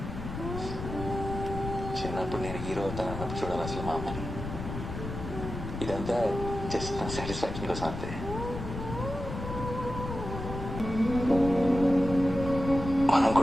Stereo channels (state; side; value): noise; left; rumble, 7 dB below the sound